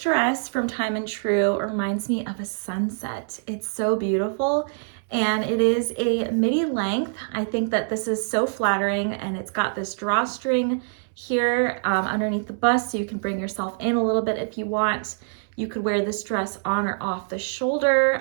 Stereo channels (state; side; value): silent; left; 62 dB below the other